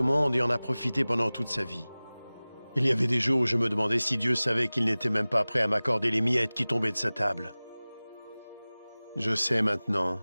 monde et en a profité pendant toute sa vie. Il y avait des jours où je me demandais si Dieu savait qu'il n'était même pas prêt à m'accorder les miettes qui tombaient de sa table. Je sais maintenant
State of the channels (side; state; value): both; inverted; correlation -0.99